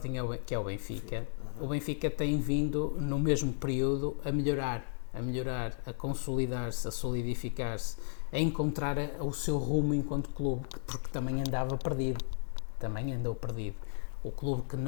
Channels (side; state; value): right; silent; digital silence